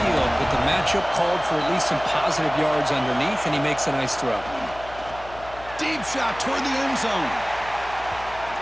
but the matchup called for at least some positive yards underneath, and he makes a nice throw. Deep shot toward the end zone.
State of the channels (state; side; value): noise; left; hum, 17 dB below the sound